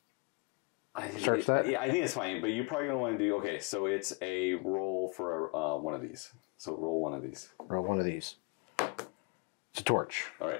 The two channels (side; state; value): right; quieter; 31.4 dB